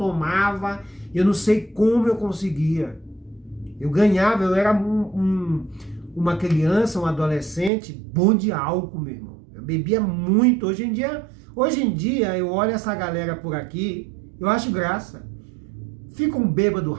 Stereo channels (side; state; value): left; drops out; at 7.7 s